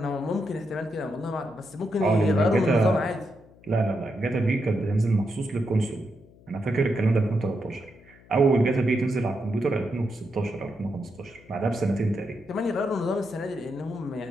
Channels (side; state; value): left; noise; hum, 25 dB below the sound